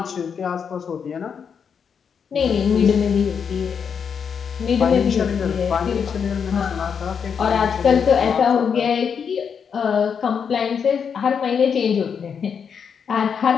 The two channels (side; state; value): right; quieter; 6.8 dB